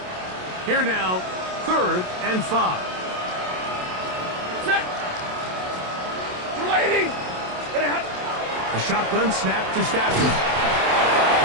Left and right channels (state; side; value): late; left; 27 ms